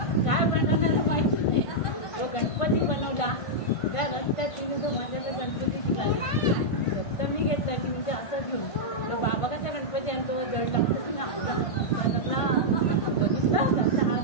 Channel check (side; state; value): right; late; 1.5 ms